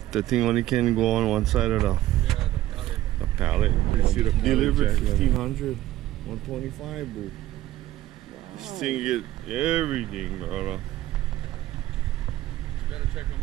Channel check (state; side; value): quieter; left; 14.6 dB